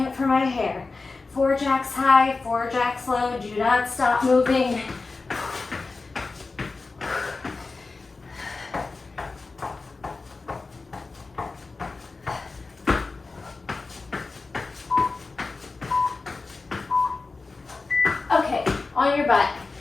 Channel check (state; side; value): quieter; right; 3.9 dB